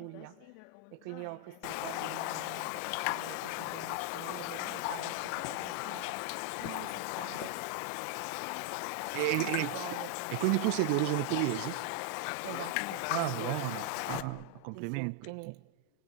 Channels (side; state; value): both; different; correlation 0.00